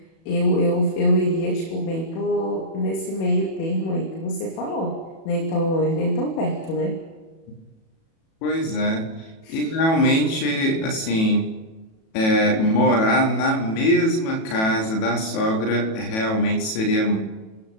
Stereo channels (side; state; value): right; late; 37 ms